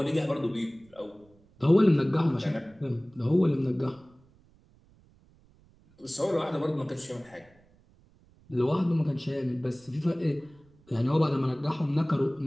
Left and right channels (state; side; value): noise; right; rumble, 30 dB below the sound